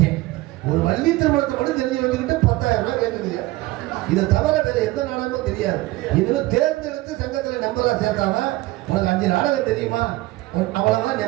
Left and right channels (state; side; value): quieter; left; 19.2 dB